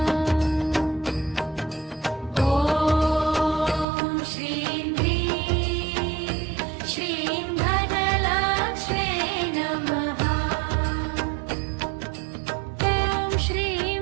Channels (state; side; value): drops out; left; at 3.9 s